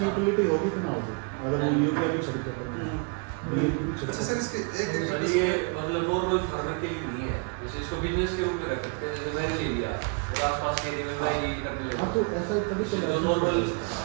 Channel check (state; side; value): quieter; left; 34.3 dB